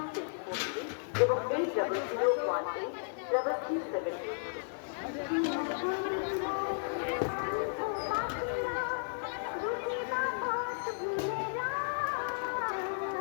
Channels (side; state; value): right; silent; digital silence